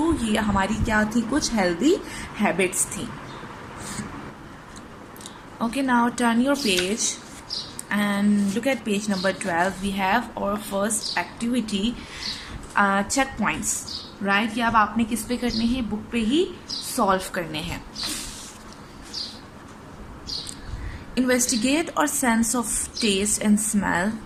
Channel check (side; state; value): both; identical; correlation 1.00